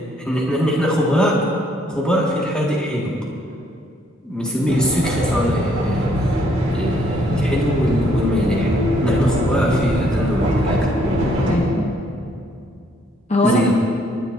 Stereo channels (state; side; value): normal; both; correlation 0.68